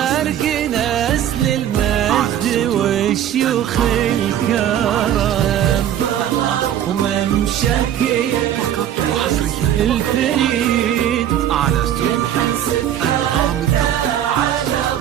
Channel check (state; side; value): quieter; left; 10.7 dB